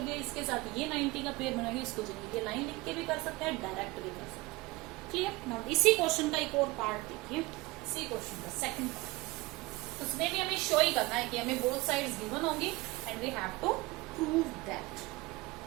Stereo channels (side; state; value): left; quieter; 22.0 dB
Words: इसके साथ ये 90 का पेयर बनाएगा, इसको चेंज. ये लाइन लिख के भी कर सकते हैं, डायरेक्ट भी कर सकते हैं. क्लियर. नाउ इसी क्वेश्चन का एक और पार्ट देखिए. इसी क्वेश्चन का सेकंड पार्ट, उसमें भी हमें शो ही करना है कि हमें बोथ साइड्स गिवन होंगी and we have to prove that.